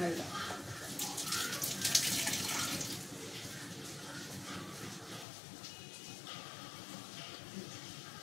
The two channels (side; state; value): right; drops out; at 5.2 s